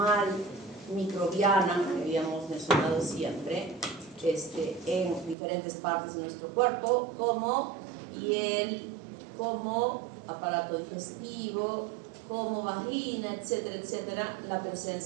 microbiana, que habíamos mencionado siempre, en diferentes partes de nuestro cuerpo, como piel, como aparato digestivo, como vagina, etcétera, etcétera, la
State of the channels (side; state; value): left; drops out; at 5.4 s